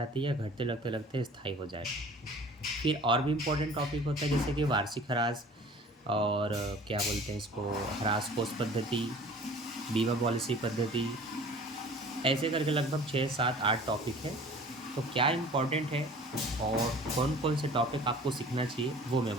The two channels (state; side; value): normal; both; correlation 0.46